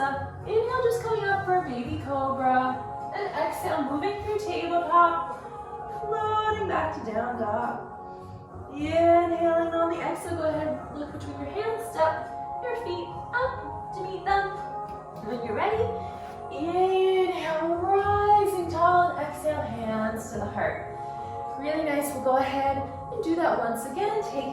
Inhale, just coming up for a baby cobra. And exhale, moving through tabletop, floating back to down dog. Inhaling on the exhale, go ahead, look between your hands, step your feet up to meet them. When you're ready, inhale, rising tall, and exhale, hands to the heart. Really nice. We'll go ahead and do that once again,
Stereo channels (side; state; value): both; identical; correlation 1.00